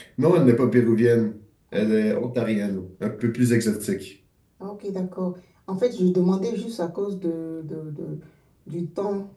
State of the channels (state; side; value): identical; both; correlation 1.00